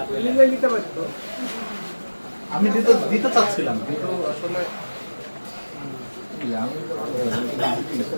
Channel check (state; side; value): inverted; both; correlation -1.00